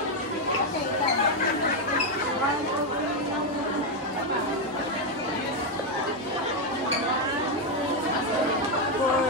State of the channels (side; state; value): both; normal; correlation 0.04